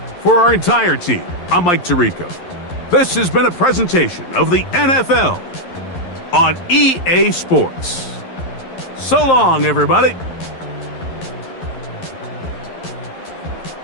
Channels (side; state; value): right; late; 11 ms